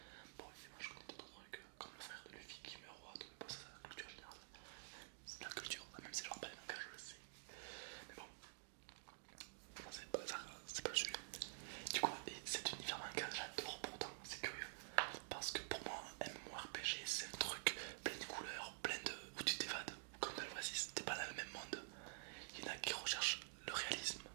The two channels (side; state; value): left; silent; digital silence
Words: Bon évidemment je connais d'autres trucs, comme le frère de Luffy qui meurt au roi, donc bon, ça, c'est la culture générale, c'est de la culture, même si je regarde pas les mangas je le sais. Mais bon, ça c'est pas le sujet. Du coup, et cet univers manga, j'adore pourtant, c'est curieux. Parce que pour moi, un MMORPG, c'est un truc plein de couleurs, plein de. Où tu t'évades, comme dans l'Oasis, t'es pas dans le même monde. Il y en a qui recherchent le réalisme.